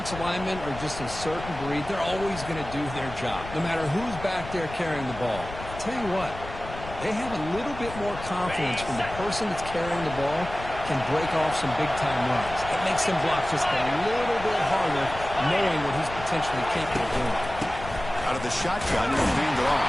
linemen are just a certain breed. They're always going to do their job, no matter who's back there carrying the ball. I'll tell you what, they have a little bit more confidence when the person that's carrying the ball can break off some big-time runs. It makes them block just a little bit harder, knowing what he's potentially capable of doing. Out of the shotgun, he'll hand it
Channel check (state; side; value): noise; left; rumble, 12 dB below the sound